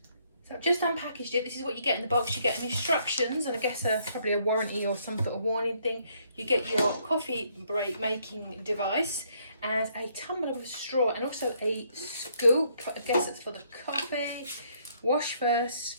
So I've just unpackaged it. This is what you get in the box. You get instructions, and I guess probably a warranty or some sort of warning thing. You get your coffee break making device and a tumbler with a straw, and also a scoop. I guess it's for the coffee. Wash first,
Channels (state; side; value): inverted; both; correlation -0.69